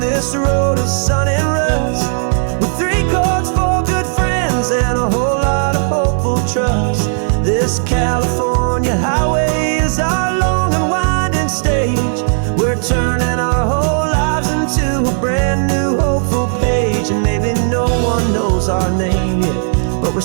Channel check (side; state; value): left; silent; 65 dB below the other